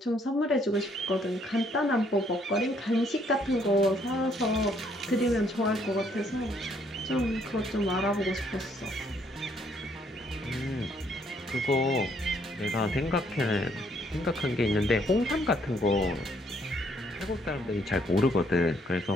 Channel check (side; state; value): both; normal; correlation 0.68